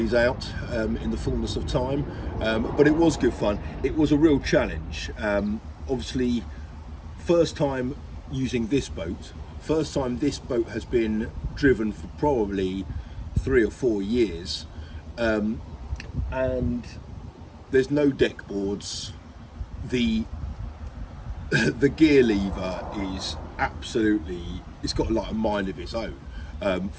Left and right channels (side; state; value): both; identical; correlation 1.00